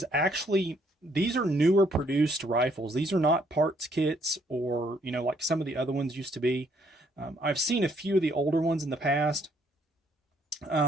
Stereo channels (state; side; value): normal; both; correlation 0.68